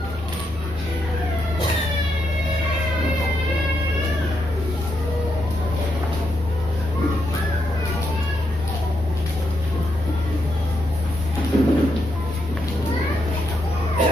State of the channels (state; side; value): normal; both; correlation 0.81